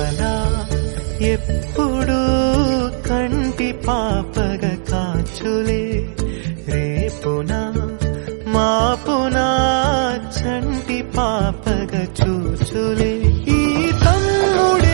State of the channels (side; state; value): left; silent; digital silence